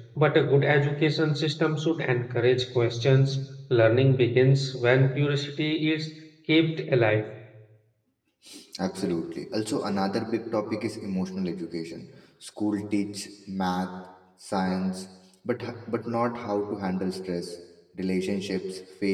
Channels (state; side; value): identical; both; correlation 1.00